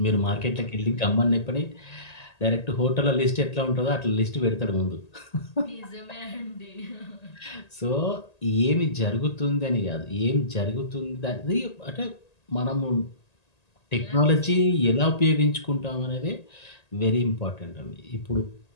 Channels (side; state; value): right; late; 1.8 ms